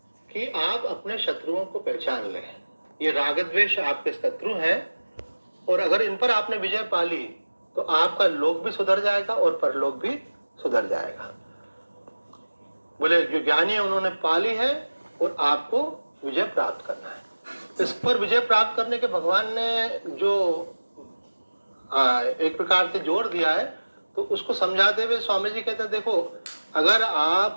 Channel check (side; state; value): both; inverted; correlation -1.00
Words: कि आप अपने शत्रुओं को पहचान लें। ये राग द्वेष आपके शत्रु हैं, और अगर इन पर आपने विजय पा ली तो आपका लोक भी सुधर जाएगा और परलोक भी सुधर जाएगा। बोले जो ज्ञानी है उन्होंने पा ली है और आपको विजय प्राप्त करना है। इस पर विजय प्राप्त करने के भगवान ने जो एक प्रकार से जोर दिया है, तो उसको समझाते हुए स्वामी जी कहते हैं, देखो अगर आप